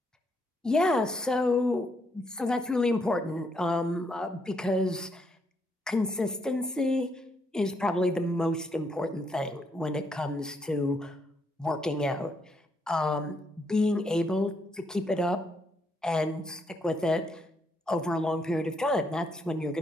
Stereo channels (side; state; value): both; normal; correlation 0.75